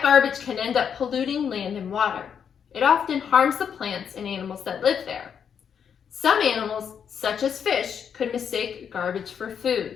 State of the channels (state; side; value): quieter; right; 7.6 dB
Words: garbage can end up polluting land and water. It often harms the plants and animals that live there. Some animals, such as fish, could mistake garbage for